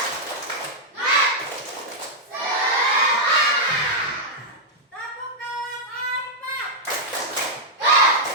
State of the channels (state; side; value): normal; both; correlation -0.05